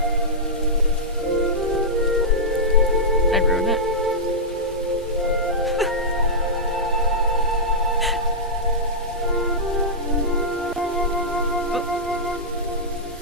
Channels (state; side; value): normal; both; correlation -0.10